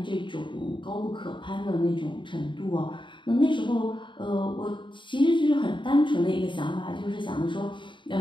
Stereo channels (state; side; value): late; right; 0.23 ms